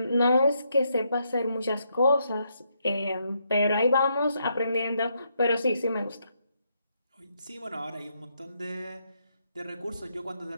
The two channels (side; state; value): both; inverted; correlation -0.77